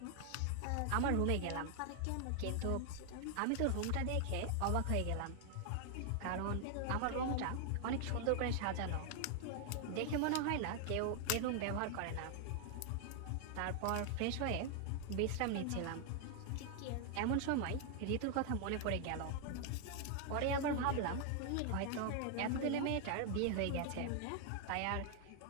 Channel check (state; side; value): different; both; correlation 0.00